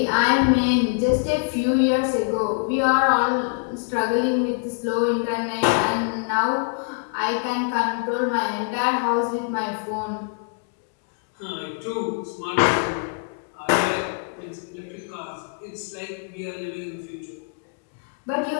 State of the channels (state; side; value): quieter; right; 39.9 dB